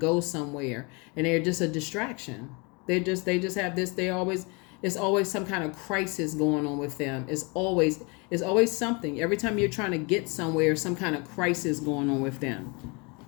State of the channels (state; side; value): quieter; right; 30.0 dB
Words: somewhere and they're just a distraction. They just have this, it's always some kind of crisis going on with them. It's always something. Every time you're trying to get somewhere, some kind of crisis going on with them.